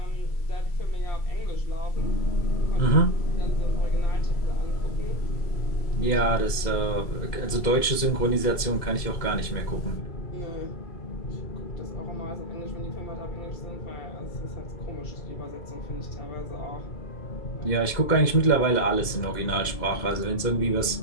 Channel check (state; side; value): late; right; 2.0 ms